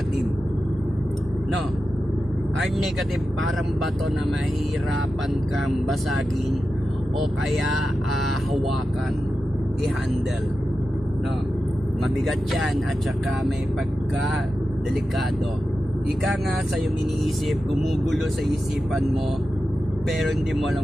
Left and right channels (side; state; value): both; normal; correlation 0.92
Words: No? Hard negative, parang bato na mahirapan kang basagin o kaya hawakan, i-handle. No? Mabigat yan at saka may pagka-delikado. Ika nga sa iyong iniisip, gumugulo sa isipan mo, pero hindi mo